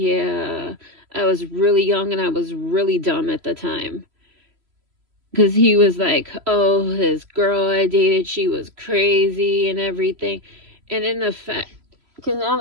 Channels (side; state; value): left; late; 3.0 ms